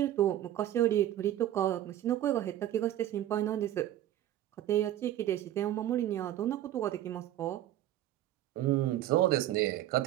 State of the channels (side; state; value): left; quieter; 12.8 dB